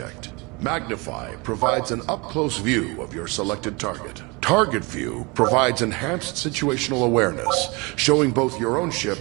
Magnify provides an up-close view of your selected target. Target view provides enhanced situational awareness, showing both your own ship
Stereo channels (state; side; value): quieter; left; 27.4 dB